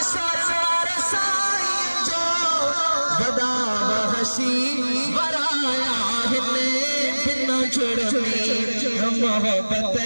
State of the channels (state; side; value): inverted; both; correlation -1.00